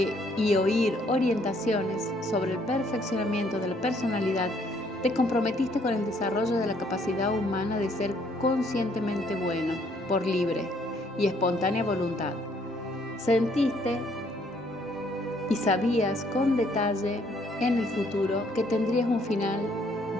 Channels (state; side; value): normal; both; correlation 0.66